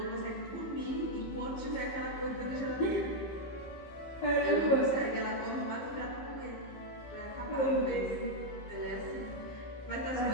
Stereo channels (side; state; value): right; late; 15 ms